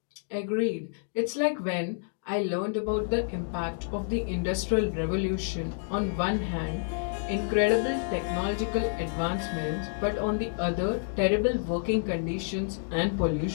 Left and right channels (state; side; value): silent; right; digital silence